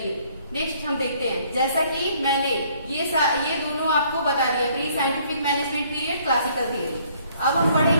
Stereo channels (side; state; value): both; inverted; correlation -0.62